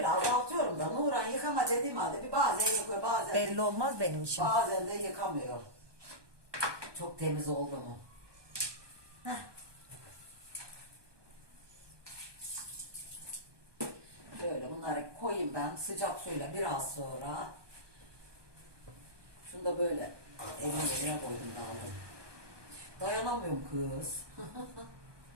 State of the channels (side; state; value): left; late; 1.2 ms